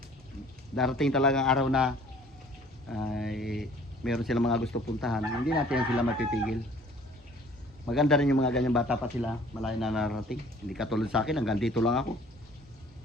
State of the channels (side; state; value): both; normal; correlation 0.53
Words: darating talaga ang araw na ay meron silang mga gusto puntahan. Hindi natin sila mapipigil. Maganda rin yung mga ganyang bata pa sila. Malayo na narating. Hindi katulad sa akin, hanggang dito lang ako.